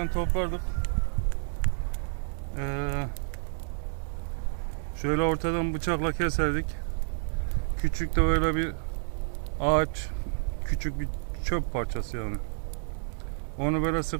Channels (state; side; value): silent; left; digital silence